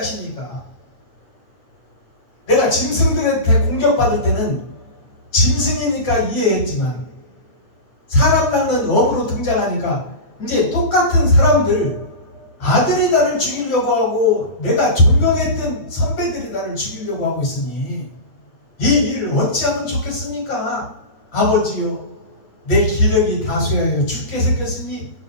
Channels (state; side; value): late; right; 8.8 ms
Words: 내가 짐승들한테 공격받을 때는 짐승이니까 이해했지만 사람 낳는 어부로 등장하니까 이제 똑같은 사람들, 아들이 나를 죽이려고 하고 내가 존경했던 선배들이 나를 죽이려고 하고 있으니 이 일을 어찌하면 좋겠습니까? 아버지요, 내 기력이 다소하여 죽게 생겼으니